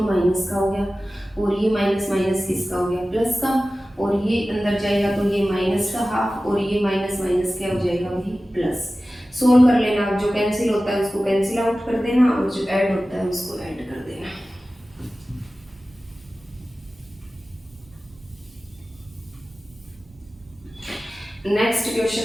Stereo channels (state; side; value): normal; both; correlation 0.96